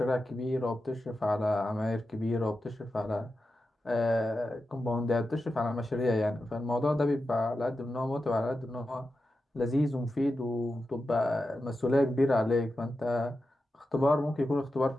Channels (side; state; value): both; normal; correlation 0.90